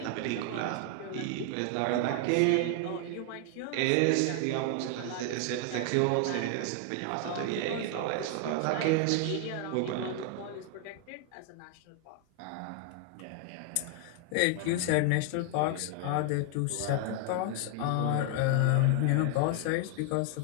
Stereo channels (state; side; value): different; both; correlation 0.00